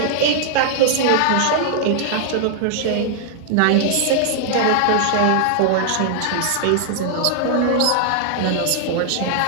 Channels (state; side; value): different; both; correlation 0.00